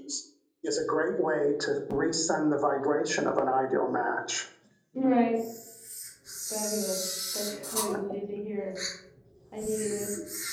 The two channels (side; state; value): both; identical; correlation 1.00